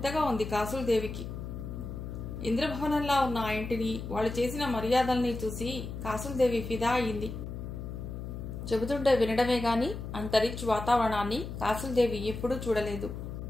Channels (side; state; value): left; noise; hum, 7 dB below the sound